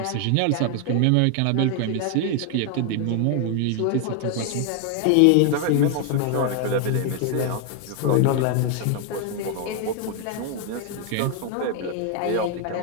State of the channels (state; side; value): different; both; correlation 0.00